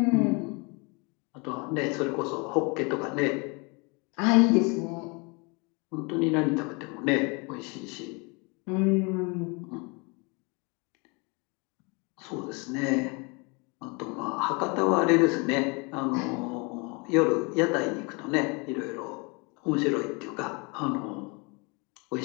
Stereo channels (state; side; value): quieter; right; 30.2 dB